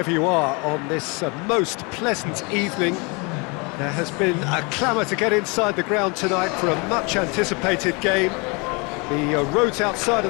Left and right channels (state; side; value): quieter; right; 30.0 dB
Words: you are on this most pleasant evening. There has been a clamour to get inside the ground tonight for a much-anticipated game. The roads outside